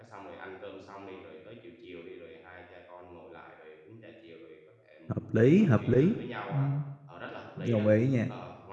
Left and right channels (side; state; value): both; identical; correlation 1.00